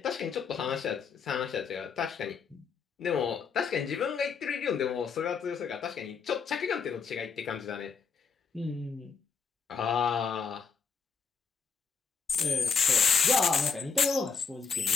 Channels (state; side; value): quieter; right; 5.7 dB